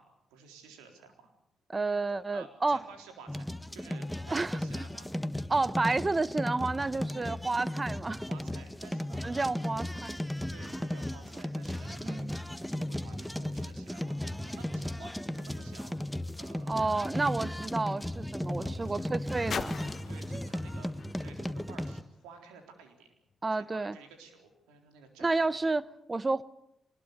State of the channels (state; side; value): normal; both; correlation 0.96